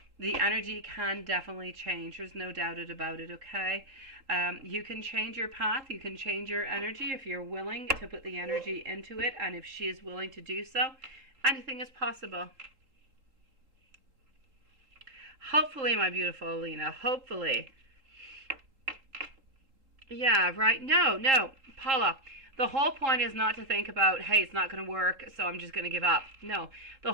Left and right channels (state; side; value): late; left; 3.8 ms